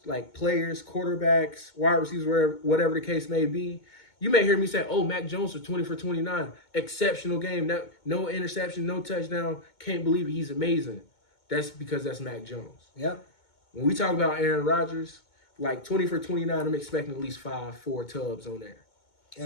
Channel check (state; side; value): late; right; 2.2 ms